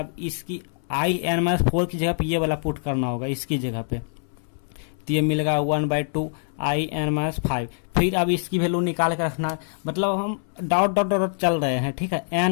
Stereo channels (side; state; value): right; silent; 62 dB below the other